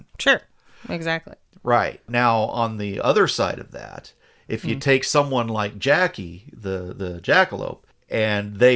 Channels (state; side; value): identical; both; correlation 1.00